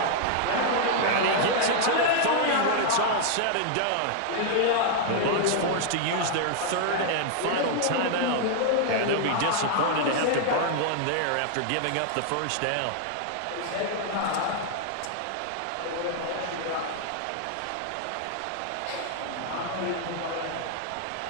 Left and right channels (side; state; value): both; different; correlation 0.00